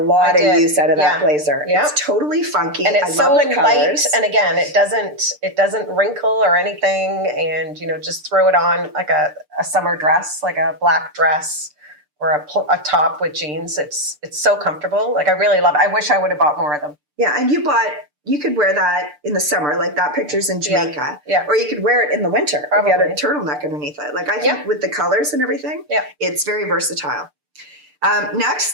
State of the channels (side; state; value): left; late; 6.7 ms